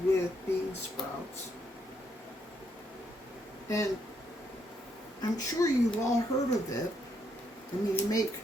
with bean sprouts. And I'm sure you've all heard of it. I mean, they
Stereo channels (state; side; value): normal; both; correlation 0.75